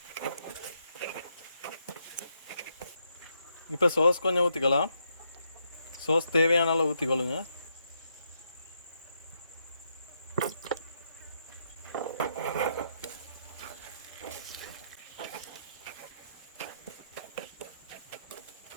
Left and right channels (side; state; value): both; inverted; correlation -0.79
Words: இப்போ சோஸ் கொஞ்சம் ஊற்றிக்கலாம். சோஸ் தேவையான அளவு ஊற்றிக்கொள்ளுங்க.